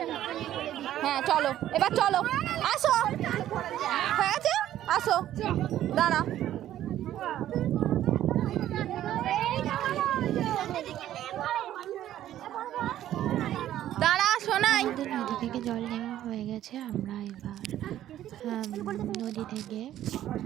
হ্যাঁ চলো, এবার চলো, আসো। হ্যাঁ আছে, আসো, দাঁড়া। শোনাই, নদী থেকে জল নেওয়া হয়ে গেছে। আমরা এবার নদী থেকে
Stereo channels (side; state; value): left; quieter; 12.4 dB